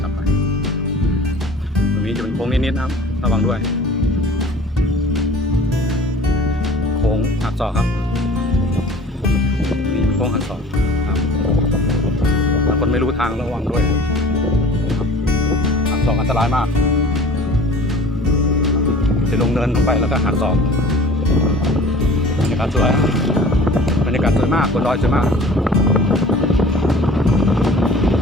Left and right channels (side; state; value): both; normal; correlation 0.45